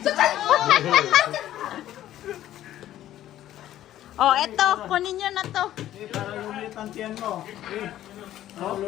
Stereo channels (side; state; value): right; quieter; 12.9 dB